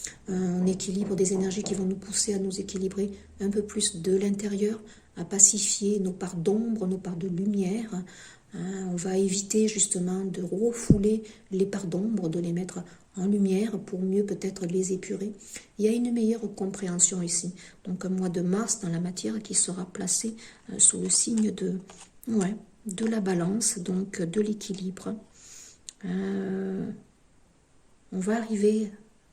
Un équilibre des énergies qui vont nous pousser à nous équilibrer un peu plus de l'intérieur, à pacifier nos parts d'ombre, nos parts de lumière. Hein, on va éviter justement de refouler les parts d'ombre, de les mettre en lumière pour mieux peut-être les épurer. Il y a une meilleure compréhension ici. Donc un mois de mars dans la matière qui sera placé sous le signe de la balance, donc de l'équilibre. On va arriver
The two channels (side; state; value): both; identical; correlation 1.00